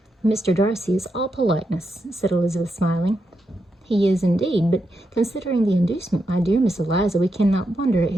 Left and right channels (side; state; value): both; normal; correlation 0.84